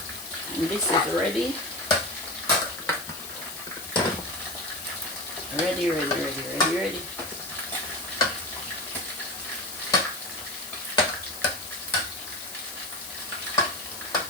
And this is ready. Ready.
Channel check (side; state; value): left; noise; hiss, 10 dB below the sound